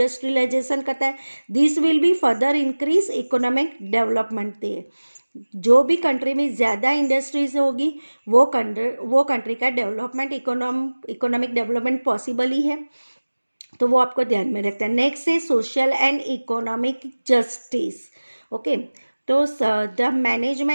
करता है, this will be further increase economic development. जो भी कंट्री में ज़्यादा इंडस्ट्रीज होगी वो कंट्री का डेवलपमेंट इकोनॉमिक डेवलपमेंट पॉसिबल ही है, तो वो आपको ध्यान में रखना है। नेक्स्ट है social and economic justice. Okay, तो the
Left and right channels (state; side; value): inverted; both; correlation -1.00